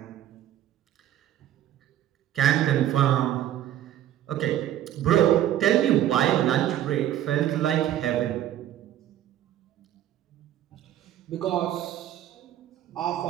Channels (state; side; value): quieter; left; 12.0 dB